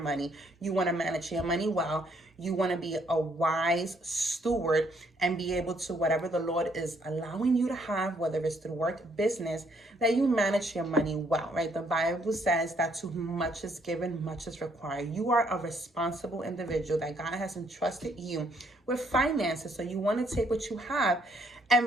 You want to manage your money well. You want to be a wise steward and be able to, whatever the Lord is allowing you to have, whether it's through work, business, that you manage your money well, right? The Bible says that to whom much is given, much is required. You are a responsible individual, that God has entrusted you with finances. So you want to take what you have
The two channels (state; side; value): normal; both; correlation 0.69